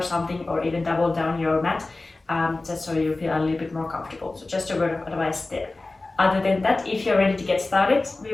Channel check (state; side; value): quieter; right; 3.2 dB